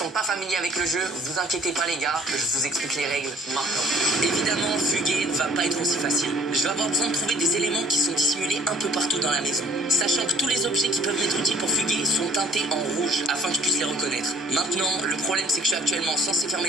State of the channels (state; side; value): normal; both; correlation 0.55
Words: pas familiers avec le jeu, vous inquiétez pas les gars, je vous explique les règles maintenant. Évidemment, fuguer ne va pas être aussi facile. Je vais avoir besoin de trouver des éléments qui sont dissimulés un peu partout dans la maison. Sachant que tous les objets qui peuvent m'être utiles pour fuguer sont teintés en rouge afin que je puisse les reconnaître. Maintenant, le problème c'est que je suis actuellement censé fermer